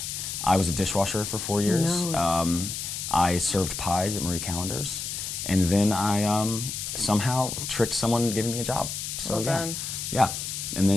I was a dishwasher for 4 years. I served pies at Marie Callender's. And then I somehow tricked someone into giving me a job. So Well yeah. done. Yeah. And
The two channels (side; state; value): left; noise; hiss, 5 dB below the sound